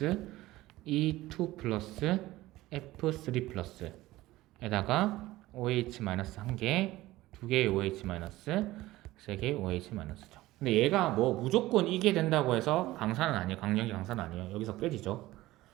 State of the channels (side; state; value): left; quieter; 17.4 dB